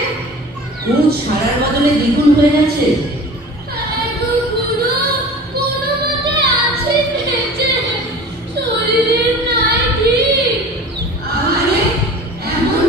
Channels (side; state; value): both; normal; correlation 0.40